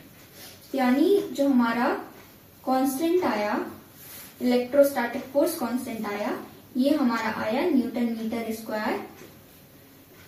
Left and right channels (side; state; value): both; identical; correlation 1.00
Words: यानी जो हमारा कांस्टेंट आया, इलेक्ट्रोस्टैटिक फोर्स कांस्टेंट आया, ये हमारा आया न्यूटन मीटर स्क्वायर